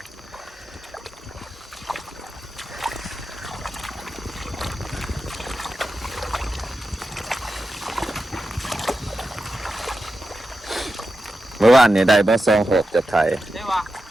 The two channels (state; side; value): normal; both; correlation 0.90